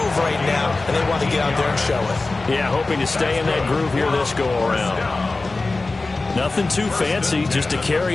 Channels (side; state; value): right; quieter; 3.4 dB